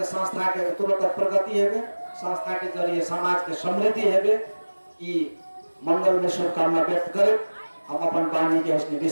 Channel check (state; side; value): inverted; both; correlation -1.00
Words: संस्था के तुरंत प्रगति हेबे, संस्था के जरिए समाज के समृद्धि हेबे, ई मंगल में शुभकामना व्यक्त करे हम अपन वाणी के उसने